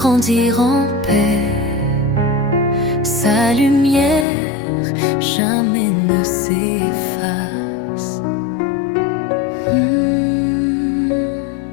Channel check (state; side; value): drops out; right; at 4.2 s